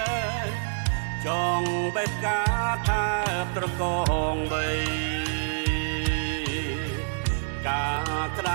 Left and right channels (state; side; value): silent; left; digital silence